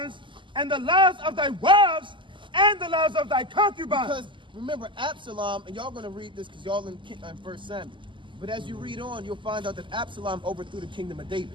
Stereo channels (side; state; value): left; late; 0.24 ms